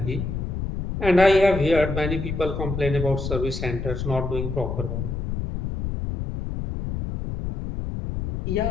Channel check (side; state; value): left; noise; rumble, 4 dB below the sound